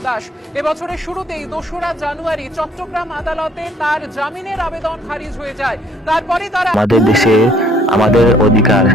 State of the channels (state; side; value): normal; both; correlation 0.62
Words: দাস এবছরের শুরুতেই 2রা জানুয়ারি চট্টগ্রাম আদালতে তার জামিনের আবেদন খারিজ হয়ে যায়। তারপরে তারা আমাদের দেশে আমাদের অধিকার